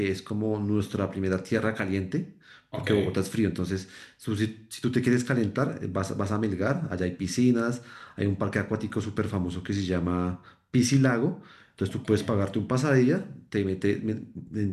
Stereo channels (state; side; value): identical; both; correlation 1.00